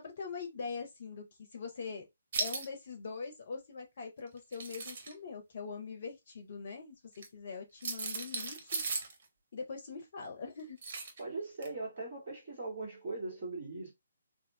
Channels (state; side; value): inverted; both; correlation -0.71